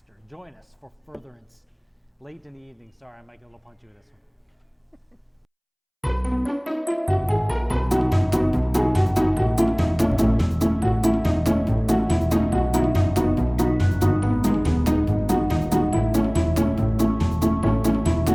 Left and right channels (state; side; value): identical; both; correlation 1.00